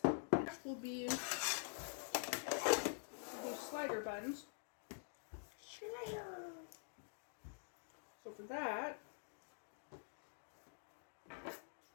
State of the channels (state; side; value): silent; right; digital silence